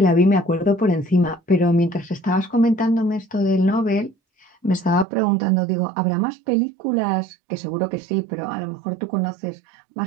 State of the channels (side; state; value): left; drops out; at 5.1 s